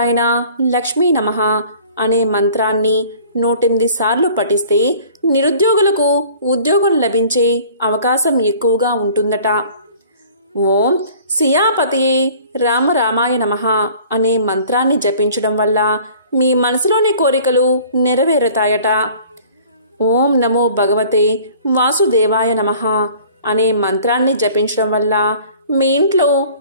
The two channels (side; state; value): both; inverted; correlation -0.50